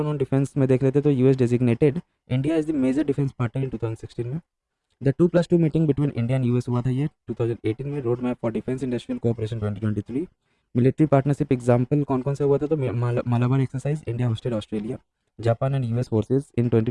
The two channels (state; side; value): identical; both; correlation 1.00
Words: on defence में देख लेते तो US designated India as the major defence partner in 2016 में। The 2+2 meeting between India and US हुआ था ये 2018 में। Road map for defence industrial cooperation 2023। Military partnership example कौन कौन सा हुआ था, तो Malabar exercise India hosted Australia, Japan and US forces in